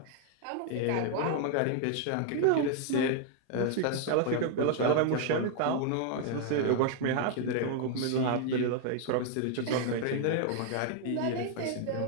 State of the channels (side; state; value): both; different; correlation 0.00